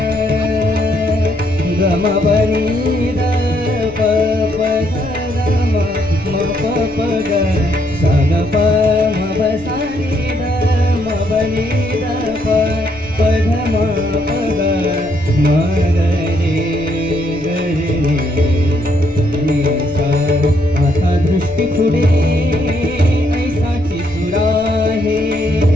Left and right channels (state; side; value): noise; left; rumble, 22 dB below the sound